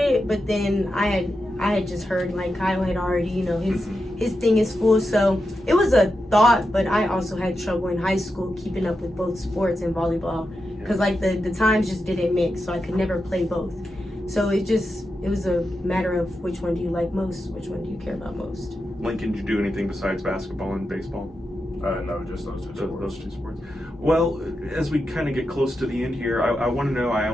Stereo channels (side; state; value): both; normal; correlation 0.88